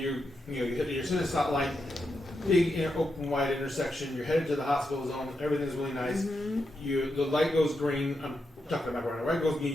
you're in a stop light, big open wide intersection. You're headed to the hospital zone. Everything's really nice. The light goes green. I'm talking about right now. Light goes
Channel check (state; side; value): normal; both; correlation 0.85